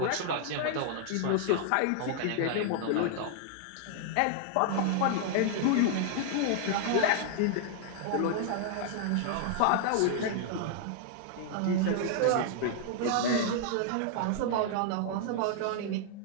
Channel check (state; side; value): different; both; correlation -0.01